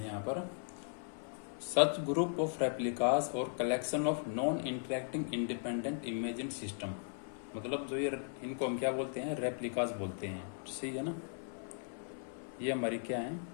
यहाँ पर, सच ग्रुप ऑफ रेप्लिकाज और collection of non interacting independent imagine system. मतलब जो ये इनको हम क्या बोलते हैं, रेप्लिकाज बोलते हैं। सही है ना। ये हमारी क्या है,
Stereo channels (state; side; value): silent; right; 53 dB below the other